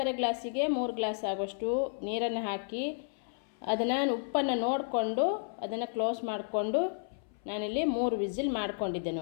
ಗ್ಲಾಸಿಗೆ 3 ಗ್ಲಾಸ್ ಆಗುವಷ್ಟು ನೀರನ್ನು ಹಾಕಿ ಅದನ್ನು ಉಪ್ಪನ್ನು ನೋಡಿಕೊಂಡು ಅದನ್ನು ಕ್ಲೋಸ್ ಮಾಡಿಕೊಂಡು ನಾನಿಲ್ಲಿ 3 ವಿಸಿಲ್ ಮಾಡ್ಕೊಂಡಿದ್ದೆ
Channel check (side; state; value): right; silent; 56 dB below the other